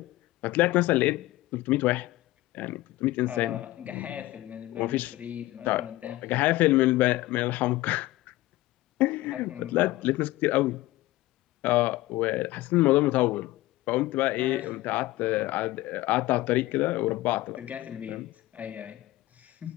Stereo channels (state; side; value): quieter; right; 17.7 dB